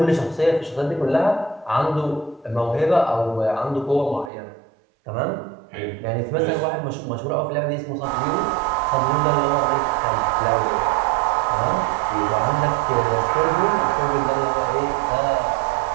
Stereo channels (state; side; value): drops out; left; at 4.3 s